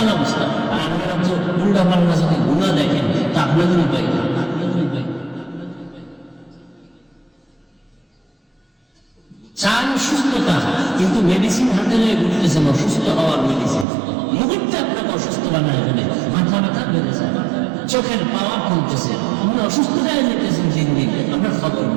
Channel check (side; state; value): left; drops out; at 13.9 s